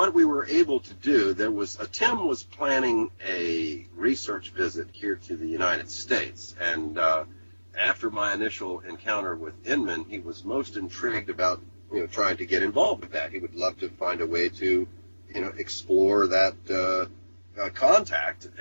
we were able to do, Tim was planning a research visit here to the United States. And after my initial encounter with Inman, he was most intrigued about, trying to get involved with that. He would love to find a way to, explore that contact,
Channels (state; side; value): inverted; both; correlation -1.00